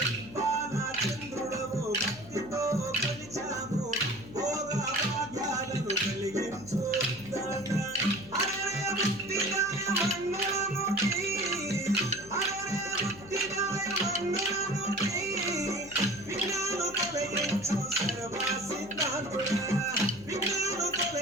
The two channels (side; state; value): left; noise; hum, 17 dB below the sound